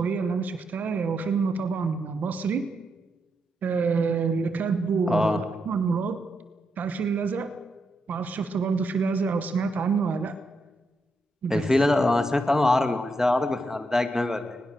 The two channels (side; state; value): both; normal; correlation 0.82